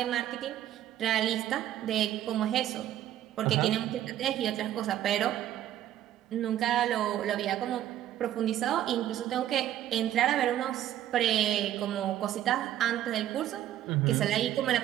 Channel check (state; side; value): quieter; left; 12.1 dB